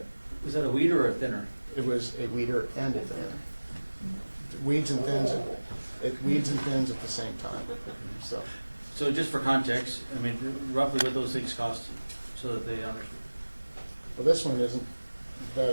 is that a weeder or a thinner? It was a weeder and a thinner. Weeds and thins at the same time. So just for context, I mean, roughly what those things cost, so that they understand. Well, this one isn't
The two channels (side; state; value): both; inverted; correlation -1.00